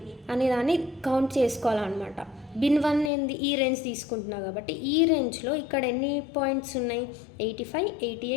అనే దాన్ని కౌంట్ చేసుకోవాలన్నమాట. బిన్ 1 ఏంది? ఈ రేంజ్ తీసుకుంటున్నా కాబట్టి ఈ రేంజ్లో ఇక్కడ ఎన్ని పాయింట్స్ ఉన్నాయి? 85,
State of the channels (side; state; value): right; drops out; at 3.1 s